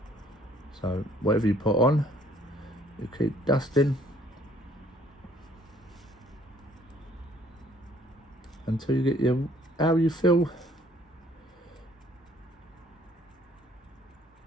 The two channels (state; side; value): normal; both; correlation 0.60